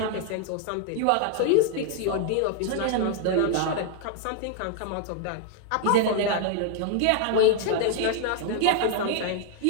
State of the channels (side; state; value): both; different; correlation 0.00